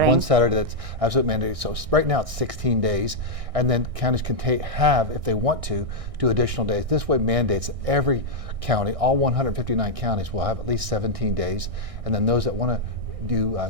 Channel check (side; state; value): left; late; 1.6 ms